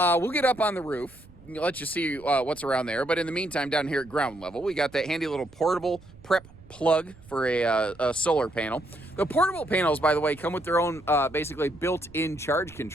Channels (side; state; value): right; noise; rumble, 23 dB below the sound